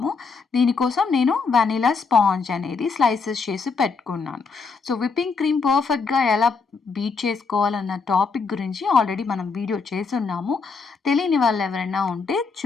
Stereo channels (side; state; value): right; quieter; 4.8 dB